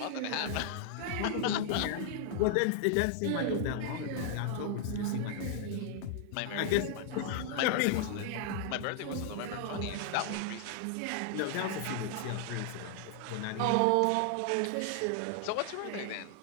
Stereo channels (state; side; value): different; both; correlation 0.00